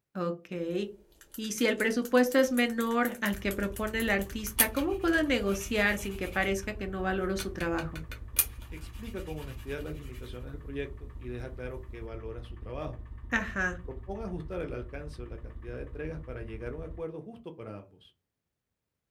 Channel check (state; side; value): identical; both; correlation 1.00